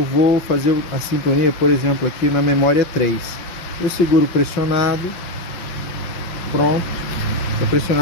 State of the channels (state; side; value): late; right; 5.6 ms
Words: vou fazer a sintonia, por exemplo, aqui na memória 3. Eu seguro pressionado, pronto. Está